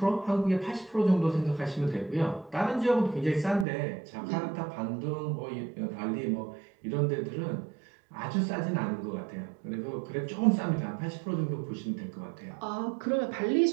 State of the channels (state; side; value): drops out; left; at 3.7 s